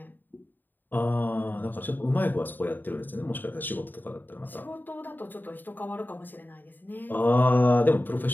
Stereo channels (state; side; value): late; right; 0.090 ms